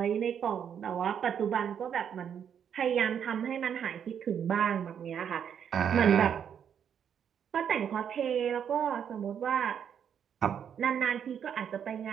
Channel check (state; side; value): quieter; left; 8.3 dB